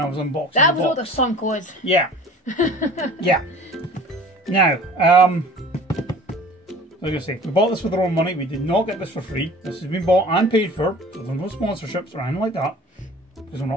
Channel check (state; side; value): normal; both; correlation 0.45